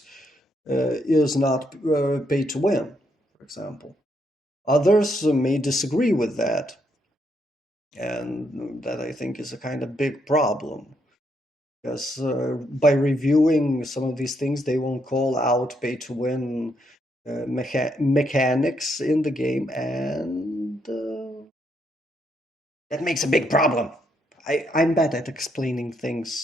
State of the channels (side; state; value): both; normal; correlation 0.76